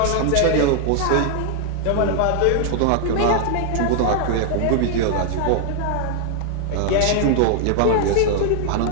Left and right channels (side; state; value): both; different; correlation 0.00